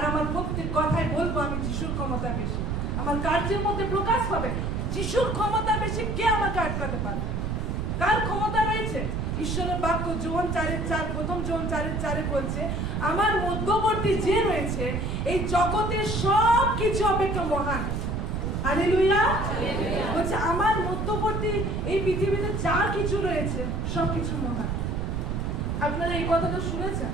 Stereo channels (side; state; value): right; noise; rumble, 1 dB below the sound